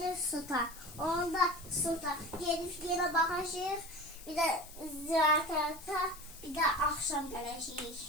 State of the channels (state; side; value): noise; left; hiss, 17 dB below the sound